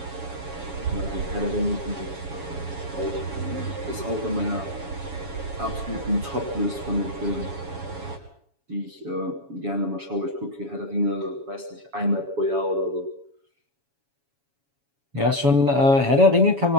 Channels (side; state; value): left; late; 7.2 ms